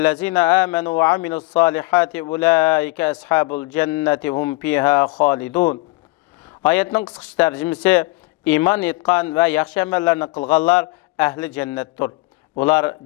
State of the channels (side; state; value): right; quieter; 23.4 dB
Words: amanu ve amilus solihati ulaika ashabul jannati hum fiha xolidun." Oyatning qisqa tarjimasi: iymon etgan va yaxshi amallarni qilganlar ahli jannatdir. Ular